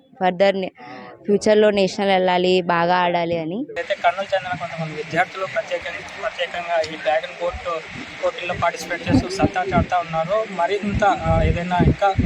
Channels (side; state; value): both; identical; correlation 1.00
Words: ఫర్దర్ ఫ్యూచర్లో నేషనల్ వెళ్ళాలి, బాగా ఆడాలి అని. అయితే కర్నూలు చెందిన కొంతమంది విద్యార్థులు ప్రత్యేకంగా ఈ డ్రాగన్ బోట్ పోటీల్లో పార్టిసిపేట్ చేస్తూ సత్తా చాటుతూ ఉన్నారు. మరింత ఏదైనా ఇంకా